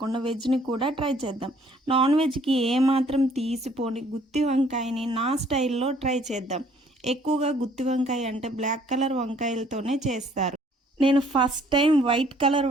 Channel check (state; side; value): normal; both; correlation 0.60